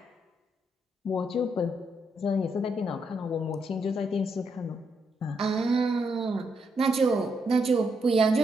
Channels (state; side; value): normal; both; correlation 0.78